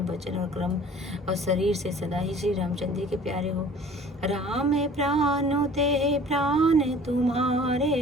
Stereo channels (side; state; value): both; normal; correlation 0.48